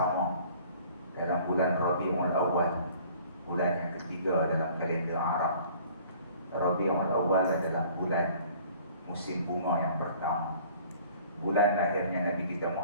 dalam bulan Rabiul Awal, bulan yang ketiga dalam kalender Arab. Rabiul Awal adalah bulan musim bunga yang pertama, bulan lahirnya Nabi kita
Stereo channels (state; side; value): inverted; both; correlation -0.52